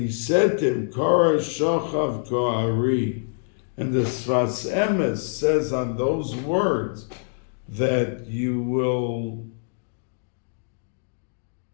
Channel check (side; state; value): right; silent; digital silence